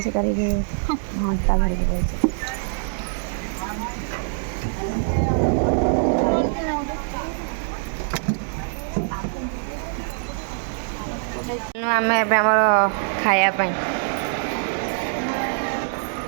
ସେ କରିକି ଘଣ୍ଟା ଧରିକି ଯାଇଛି। ଆମେ ଏବେ ଆମର ଖାଇବା ପାଇଁ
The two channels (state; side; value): silent; left; digital silence